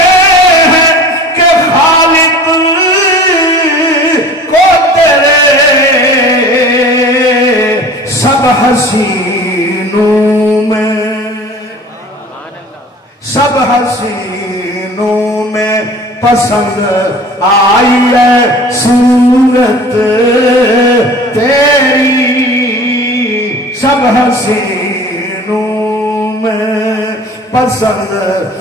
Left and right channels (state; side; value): normal; both; correlation 0.43